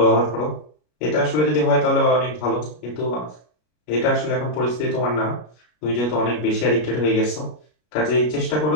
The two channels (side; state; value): right; late; 33 ms